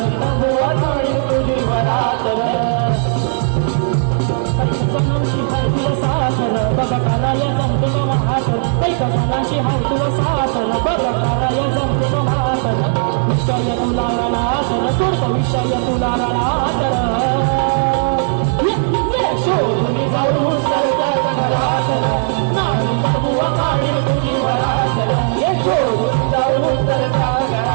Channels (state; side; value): silent; left; digital silence